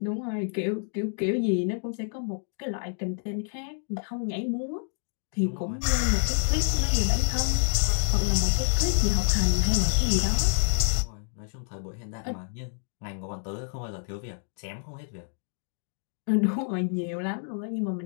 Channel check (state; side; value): silent; right; 59 dB below the other